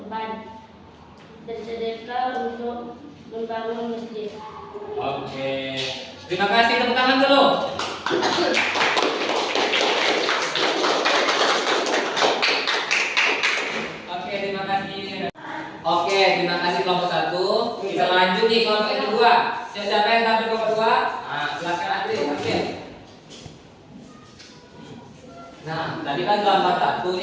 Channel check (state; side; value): identical; both; correlation 1.00